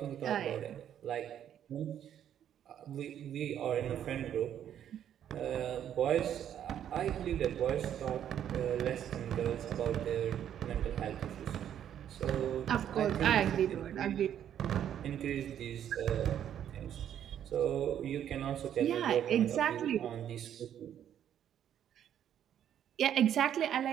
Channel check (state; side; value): quieter; left; 10.0 dB